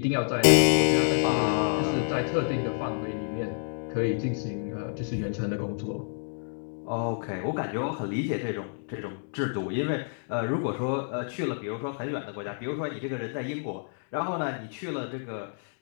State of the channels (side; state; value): right; silent; digital silence